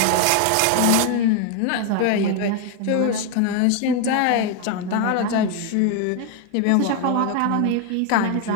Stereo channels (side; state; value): both; different; correlation 0.01